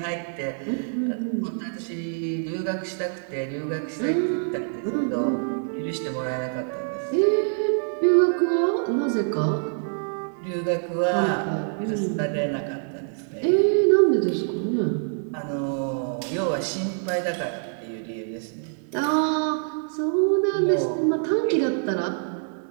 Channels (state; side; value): silent; left; digital silence